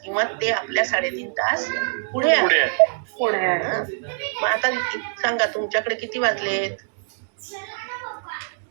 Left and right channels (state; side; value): silent; left; digital silence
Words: किंवा ते आपल्या 3.5 तास पुढे आहेत. पुढे आहे. हा. मग आता सांगा तुमच्याकडे किती वाजलेत